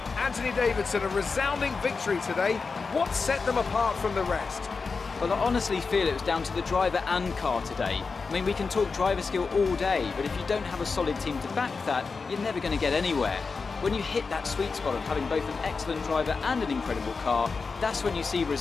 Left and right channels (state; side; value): quieter; right; 4.7 dB